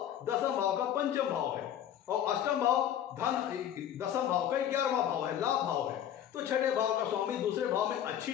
10वां भाव का पंचम भाव है और अष्टम भाव धन 10वां भाव का 11वां भाव है, लाभ भाव है। तो छठे भाव का स्वामी दूसरे भाव में अच्छी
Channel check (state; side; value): quieter; right; 10.5 dB